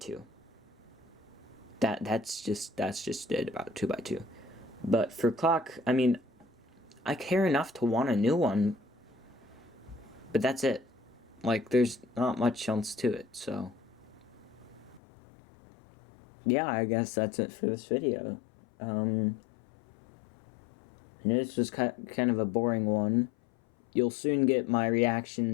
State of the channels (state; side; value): drops out; right; at 15.0 s